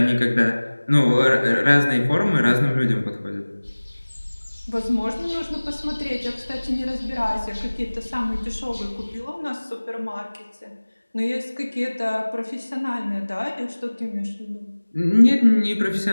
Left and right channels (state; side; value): inverted; both; correlation -1.00